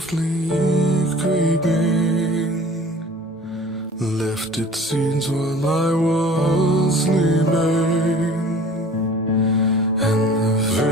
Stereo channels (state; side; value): normal; both; correlation 0.46